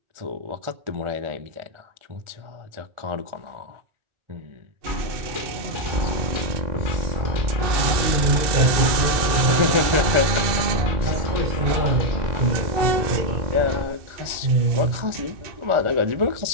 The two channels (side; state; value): left; late; 2.6 ms